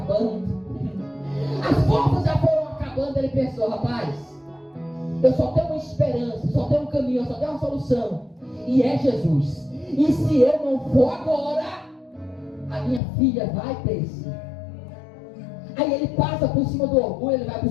As forças já foram acabando. Ele pensou: rapaz, eu só tenho uma esperança, só tenho um caminho, só tenho uma solução. E é Jesus. E se eu não for agora, a minha filha vai perecer. Aí ele passa por cima do orgulho, ele vai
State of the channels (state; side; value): drops out; right; at 13.0 s